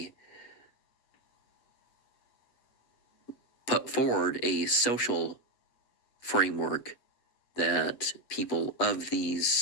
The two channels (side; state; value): right; late; 8.1 ms